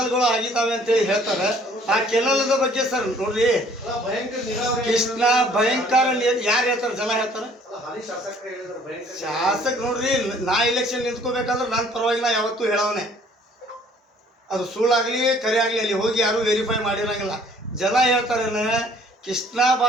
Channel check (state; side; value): normal; both; correlation 0.57